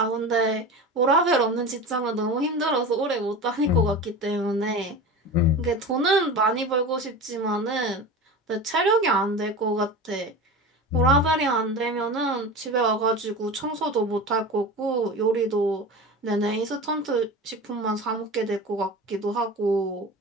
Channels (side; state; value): both; normal; correlation 0.30